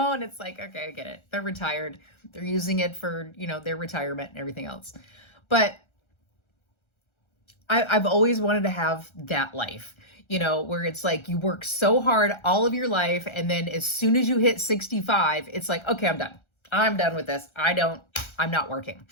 it's like, okay, I get it. They're retired. They're using it for, their retirement and everything else. But I've always wanted to have that life, where it's like you work so hard all of your life. And then as soon as you hit 65, it's like, okay, I'm done. I'm done with this. I'm not working.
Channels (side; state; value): right; late; 1.3 ms